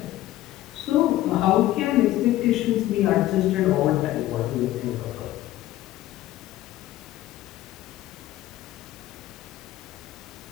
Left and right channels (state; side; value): quieter; right; 14.9 dB